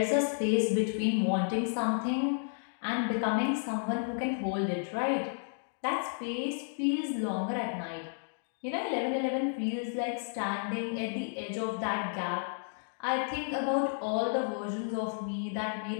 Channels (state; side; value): silent; right; digital silence